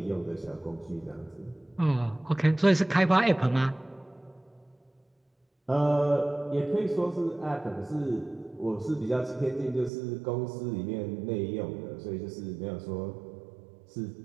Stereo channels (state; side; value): drops out; left; at 9.9 s